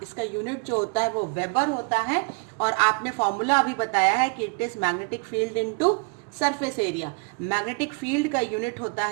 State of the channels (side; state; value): left; quieter; 33.5 dB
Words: इसका यूनिट जो होता है वो वेबर होता है, और आपने फॉर्मूला अभी बताया है कि it is magnetic field into surface area. Magnetic field का यूनिट होता